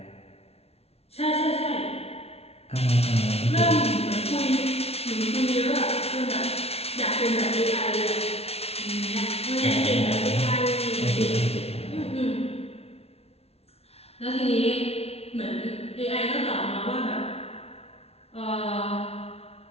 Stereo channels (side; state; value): right; late; 0.30 ms